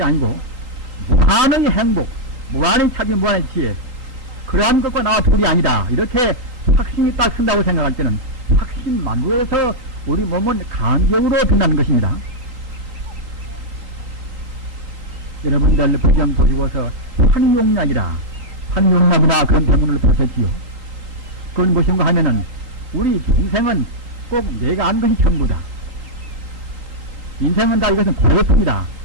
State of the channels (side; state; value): left; late; 3.8 ms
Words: 아니고 무한의 행복, 무한의 차비, 무한의 지혜 그러한 것과 나와 둘이 아니다. 이렇게 확신이 딱 쓴다고 생각할 때는 확신만으로해서 우리 몸은 간격으로 든다는 것입니다. 여러분들 배경 보시고서 환용약이나 그런 병문을 보셨지요. 그건 무엇인가 하면은 우리 인생은 꼭 내가 아는 것이 전부다. 인생은 다 이것은 고래품이다.